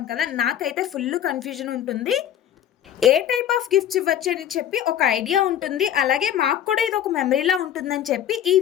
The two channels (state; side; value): quieter; right; 10.5 dB